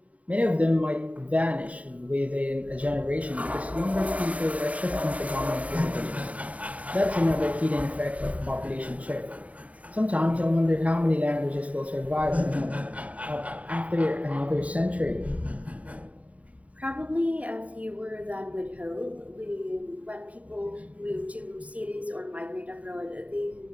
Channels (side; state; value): left; late; 0.068 ms